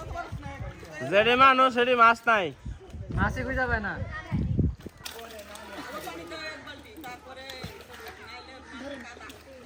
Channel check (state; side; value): identical; both; correlation 1.00